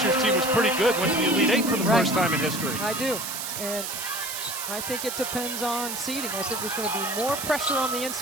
year's team was pretty good, went to the Elite Eight for the first time in history. I do. And I think it depends on seeding. I think there's going to be more pressure on the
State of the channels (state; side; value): noise; right; hiss, 5 dB below the sound